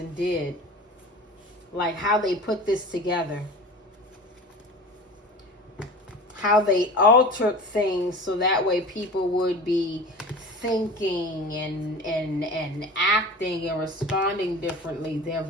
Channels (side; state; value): both; normal; correlation 0.36